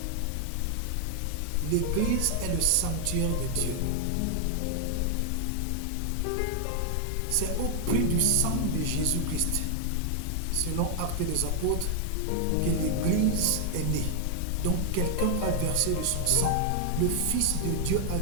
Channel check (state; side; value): different; both; correlation 0.00